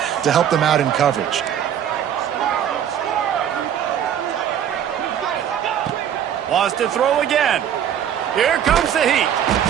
to help them out in coverage. Wants to throw again. Here comes the heat.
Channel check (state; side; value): quieter; left; 9.5 dB